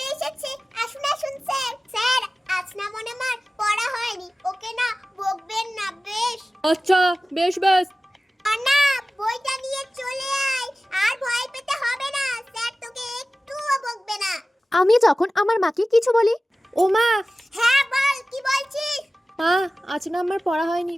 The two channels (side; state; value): both; normal; correlation 0.97